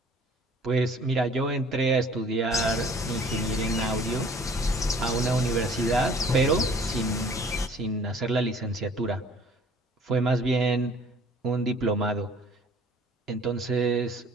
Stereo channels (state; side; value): normal; both; correlation 0.52